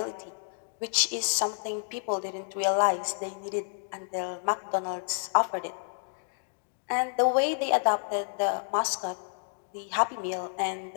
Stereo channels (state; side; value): silent; right; digital silence